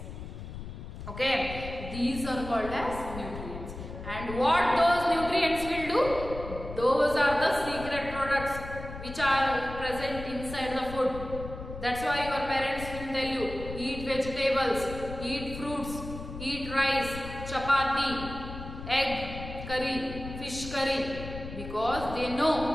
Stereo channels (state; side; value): noise; left; rumble, 10 dB below the sound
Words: Okay, these are called as nutrients. And what those nutrients will do? Those are the secret products which are present inside the food. That's why your parents will tell you, eat vegetables, eat fruits, eat rice, chapati, egg curry, fish curry, because they